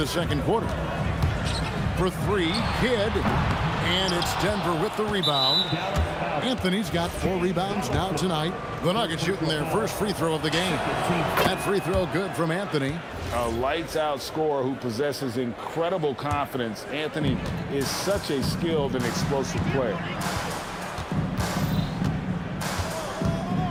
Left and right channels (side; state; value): both; identical; correlation 1.00